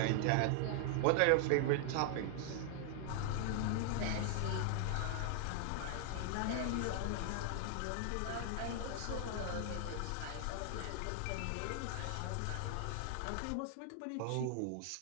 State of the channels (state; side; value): different; both; correlation 0.00